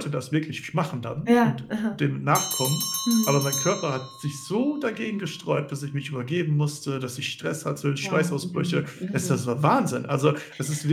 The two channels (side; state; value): both; identical; correlation 1.00